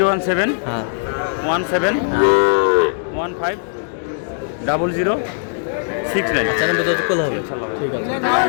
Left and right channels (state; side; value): silent; right; digital silence